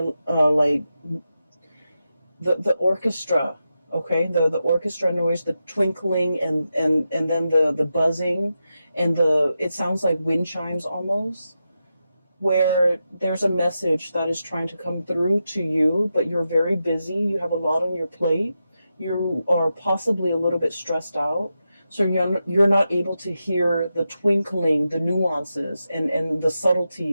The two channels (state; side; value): inverted; both; correlation -0.89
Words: the orchestra, okay? The orchestra noise, the twinkling, and then the buzzing, and it sounds like wind chimes almost, where there's a message that is trying to come through to you, but you're very busy. You have a lot on your plate. You are possibly a little bit stressed out. So you're not able to hear the twinkling, the nuances, and the